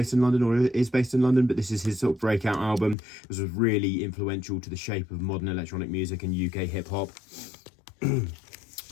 in London, or is based in London, but this is his sort of breakout album. This was really influential to the shape of modern electronic music and UK hip-hop.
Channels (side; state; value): right; drops out; at 3.0 s